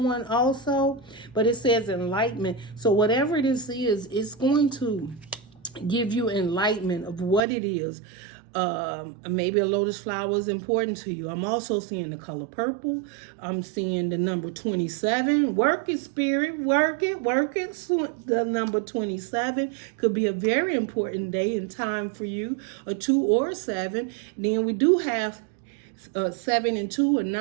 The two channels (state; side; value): drops out; left; at 7.4 s